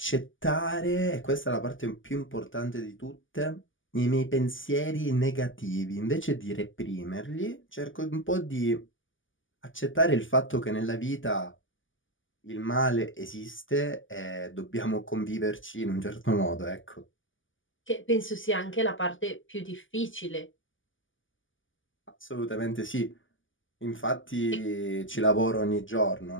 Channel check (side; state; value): right; late; 0.57 ms